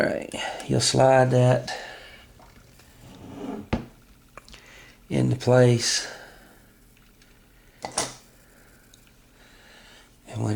you'll slide that into place, and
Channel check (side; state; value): both; identical; correlation 1.00